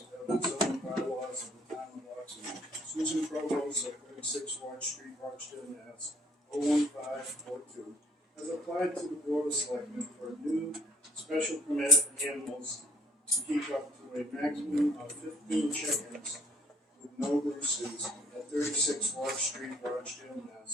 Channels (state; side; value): normal; both; correlation 0.61